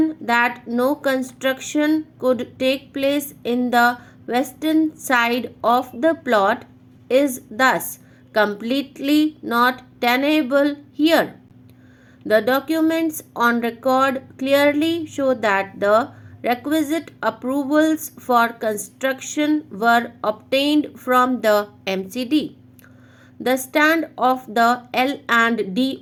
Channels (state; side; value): identical; both; correlation 1.00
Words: that no construction could take place in the western side of the plot is thus completely not tenable here. The documents on record clearly show that the requisite approvals for construction were obtained from the MCD. The stand of the